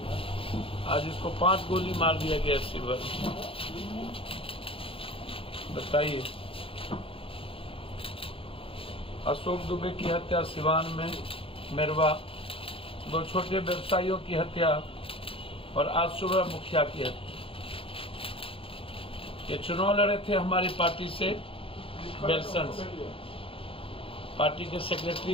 इसको 5 गोली मार दिया गया सिल्वर। बताइए, अशोक दुबे की हत्या सिवान में, मेरवा, 2 छोटे व्यवसायियों की हत्या और आज सुबह मुखिया की हत्या। ये चुनाव लड़े थे हमारी पार्टी से, बेलसन से, पार्टी के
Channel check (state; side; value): late; right; 0.27 ms